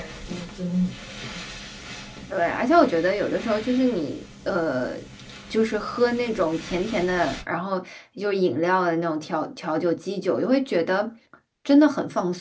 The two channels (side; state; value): both; identical; correlation 1.00